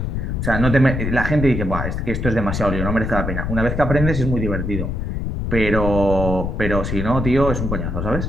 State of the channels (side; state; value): left; noise; rumble, 2 dB below the sound